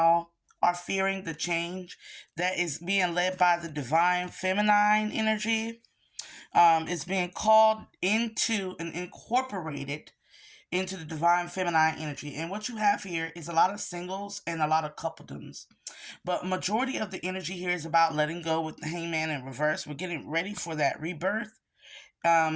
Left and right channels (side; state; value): both; identical; correlation 1.00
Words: are fearing the change that is being led by the divine feminine energy. It's being called into and incorporated into the divine feminine energy. And what you have here is a lot of singles and a lot of coupledoms. But majority of the energy here is about letting go with the hangman in reverse. We're getting ready for that rebirth.